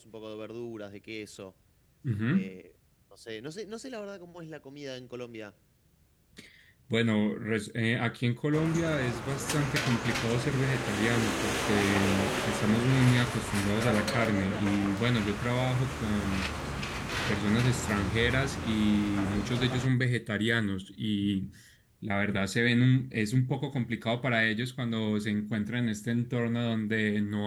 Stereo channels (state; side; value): identical; both; correlation 1.00